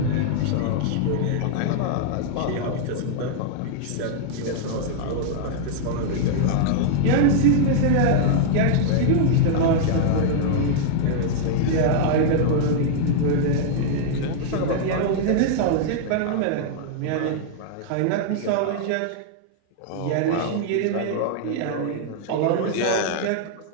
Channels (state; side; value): different; both; correlation -0.01